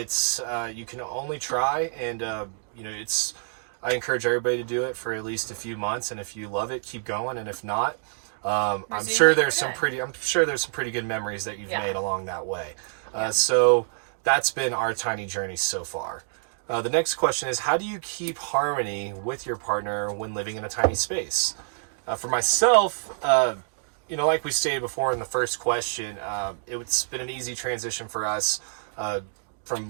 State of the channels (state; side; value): silent; left; 60 dB below the other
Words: you can only try, and I encourage everybody to do it for at least a few months, and if you love it, keep going, and if not, I'm sure there's some pretty good memories that you've made along that way. So that's been our tiny journey so far. The next question is, how do you keep harmony with your partner when living in a tiny space? For myself, like we stated before in the first question, it's been an easy transition for us